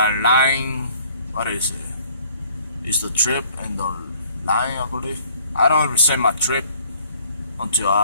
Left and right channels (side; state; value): both; inverted; correlation -0.58